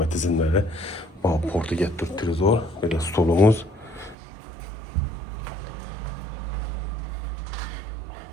tizimlari. Portiga televizor, böyle stolumuz.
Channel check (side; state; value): left; drops out; at 4.2 s